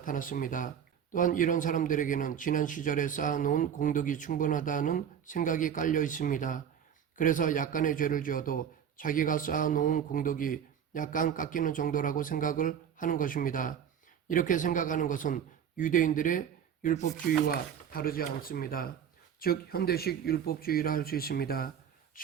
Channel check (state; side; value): quieter; left; 8.5 dB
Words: 또한 이런 사람들에게는 지난 시절에 쌓아놓은 공덕이 충분하다는 생각이 깔려 있습니다. 그래서 약간의 죄를 지어도 자기가 쌓아놓은 공덕이 약간 깎이는 정도라고 생각을 하는 것입니다. 이렇게 생각하는 것은 유대인들의 율법주의와 다르지 않습니다. 즉 현대식 율법주의라 할 수 있습니다.